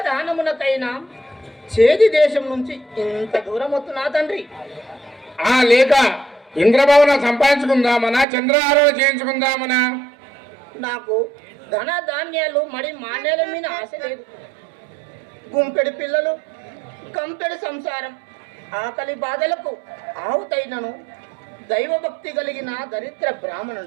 చేది దేశం నుంచి ఇంత దూరం వస్తున్నా తండ్రి. లేక ఇంద్రభవనం సంపాదించుకుందామనా, చంద్రహారం చేయించుకుందామనా? నాకు ధన ధాన్యాలు మడి మాన్యాల మీద ఆశ లేదు. గుంపెడి పిల్లలు, కంపెడి సంసారం, ఆకలి బాధలకు ఆవుతైనను దైవభక్తి కలిగిన దరిద్ర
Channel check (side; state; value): left; drops out; at 8.2 s